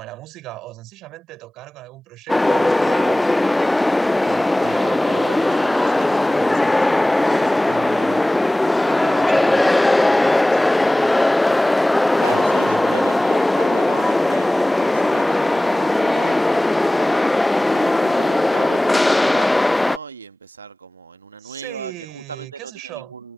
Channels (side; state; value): both; normal; correlation 0.98